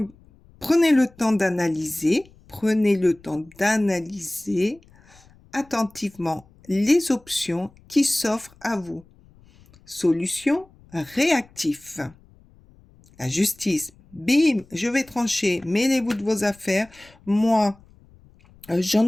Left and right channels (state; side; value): noise; left; rumble, 27 dB below the sound